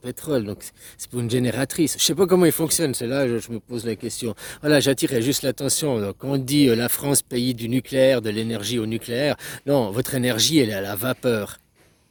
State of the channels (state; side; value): identical; both; correlation 1.00